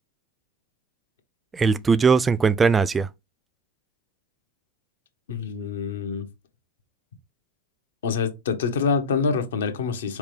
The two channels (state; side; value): normal; both; correlation 0.43